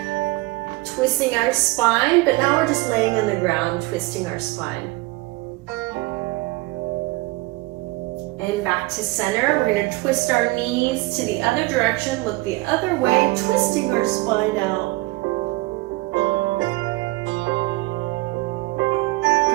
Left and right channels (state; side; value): quieter; left; 21.4 dB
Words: twisting our spine, but now we're just laying on the ground, twisting our spine. And back to center, we're gonna twist our knees to the other direction, look the other way, twisting our spine out.